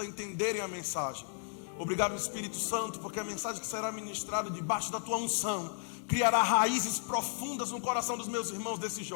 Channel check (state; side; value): silent; right; digital silence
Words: entenderem a mensagem. Obrigado, Espírito Santo, porque a mensagem que será ministrada debaixo da tua unção criará raízes profundas no coração dos meus irmãos, desses